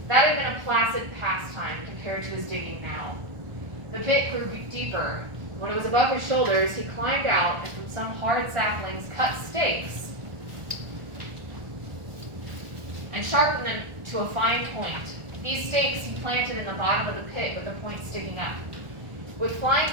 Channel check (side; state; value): left; late; 1.4 ms